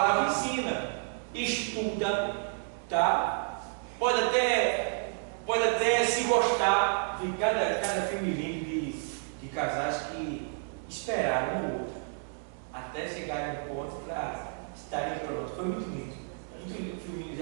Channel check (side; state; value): left; silent; 57 dB below the other